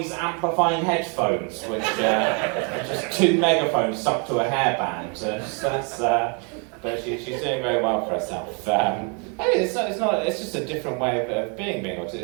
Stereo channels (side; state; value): left; quieter; 36.6 dB